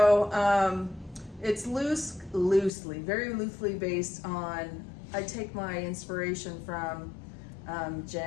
it's very loosely based on, I take my inspiration from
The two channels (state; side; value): drops out; right; at 2.7 s